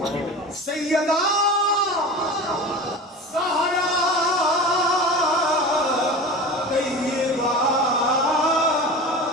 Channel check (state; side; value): normal; both; correlation 0.32